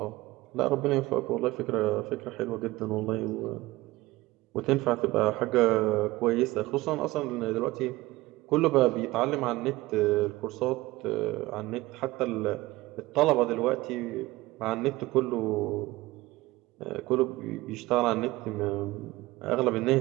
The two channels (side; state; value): left; quieter; 19.5 dB